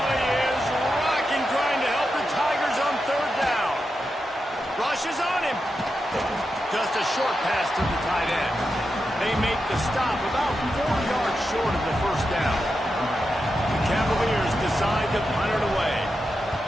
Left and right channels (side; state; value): both; normal; correlation 0.88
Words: is rocking, trying to help the Tigers on 3rd down. Rushes on him. Just a short pass to the tight end. They make the stop about 4 yards short of the 1st down. The Cavaliers decide to punt it away.